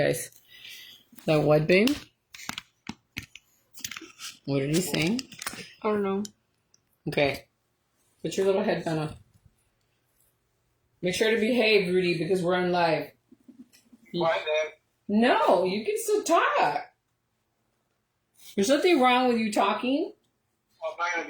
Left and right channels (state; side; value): identical; both; correlation 1.00